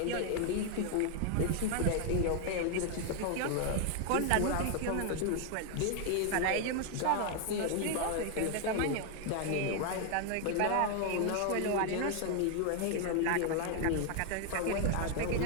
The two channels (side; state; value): both; different; correlation 0.00